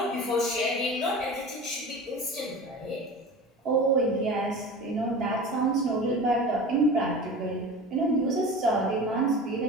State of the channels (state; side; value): normal; both; correlation 0.34